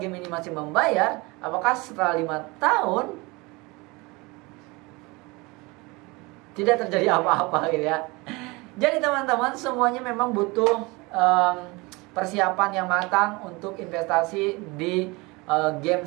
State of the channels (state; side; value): quieter; left; 25.0 dB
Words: game ini masih membayar? Apakah setelah 5 tahun tidak terjadi apa-apa gitu ya? Jadi teman-teman, semuanya memang butuh persiapan yang matang untuk investasi di game